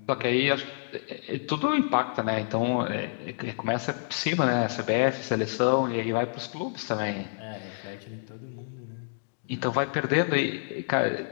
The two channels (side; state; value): right; silent; digital silence